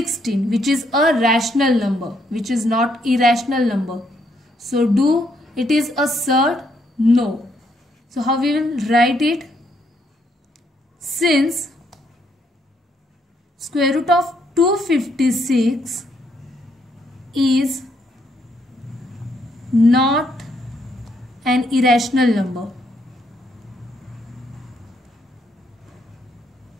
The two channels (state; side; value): normal; both; correlation 0.73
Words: which is a rational number, which is not irrational number. So do it is a surd? No. So how we will write it? Since square root of 256 is not an irrational number,